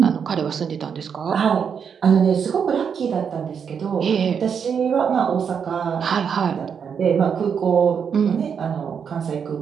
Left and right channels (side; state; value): left; quieter; 7.0 dB